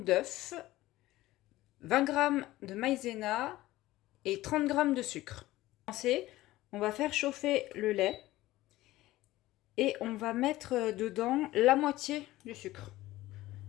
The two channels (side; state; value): right; quieter; 17.0 dB